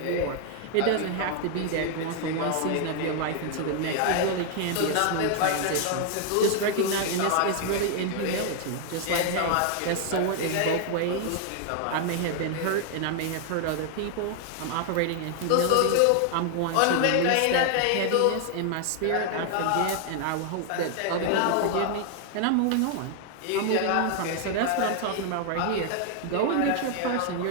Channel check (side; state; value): both; different; correlation 0.00